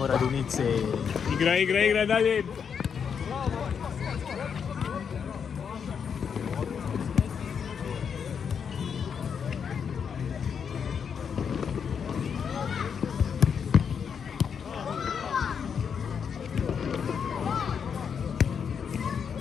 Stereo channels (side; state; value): right; quieter; 6.9 dB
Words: Radunice. Igra, dalje.